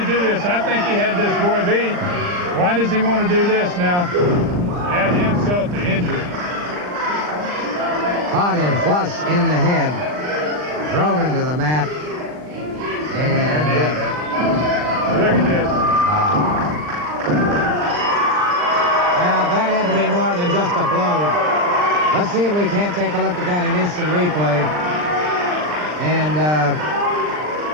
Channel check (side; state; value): left; late; 39 ms